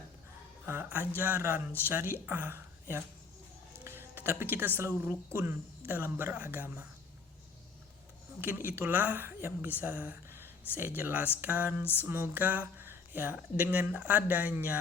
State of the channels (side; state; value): right; quieter; 4.9 dB